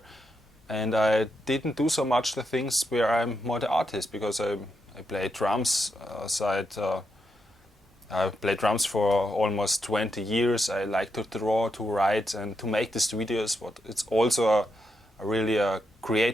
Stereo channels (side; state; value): both; normal; correlation 0.83